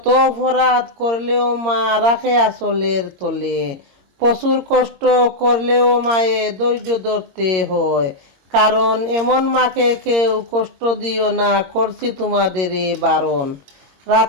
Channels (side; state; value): left; late; 22 ms